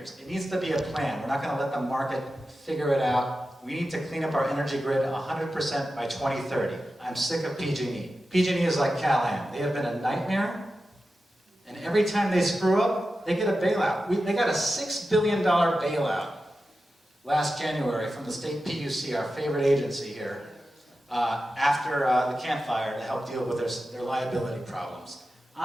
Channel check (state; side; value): normal; both; correlation 0.92